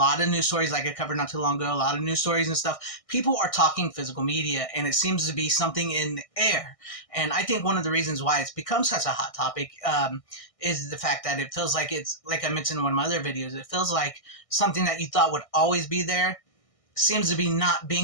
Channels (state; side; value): late; right; 1.6 ms